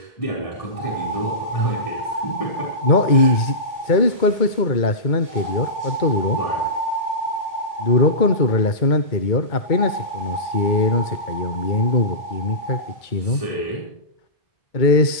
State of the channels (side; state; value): right; late; 2.2 ms